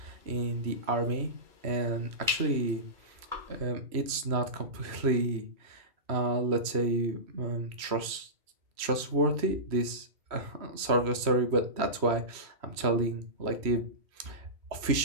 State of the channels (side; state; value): left; late; 3.0 ms